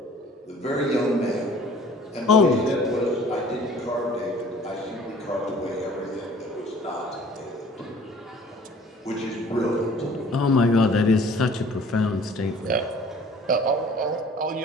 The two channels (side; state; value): both; normal; correlation 0.50